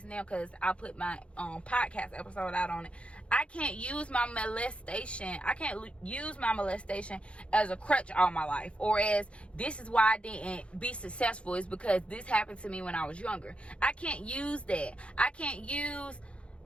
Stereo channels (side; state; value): right; late; 0.060 ms